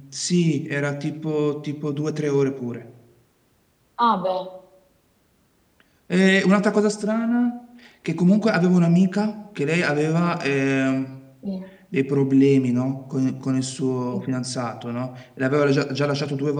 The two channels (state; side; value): identical; both; correlation 1.00